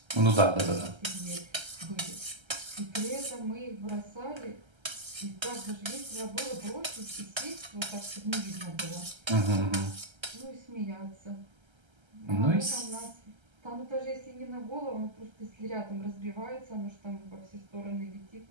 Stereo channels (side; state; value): left; late; 1.3 ms